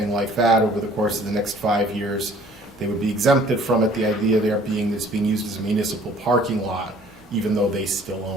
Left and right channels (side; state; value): both; normal; correlation 0.54